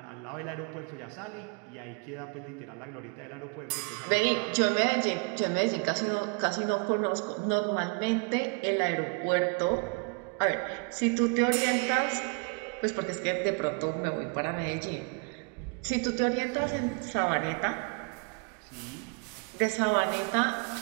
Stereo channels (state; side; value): quieter; left; 36.2 dB